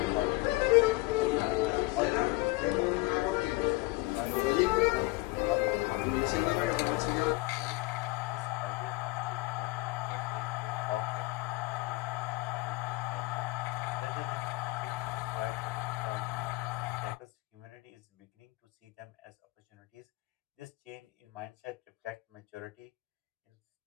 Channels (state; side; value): quieter; right; 21.9 dB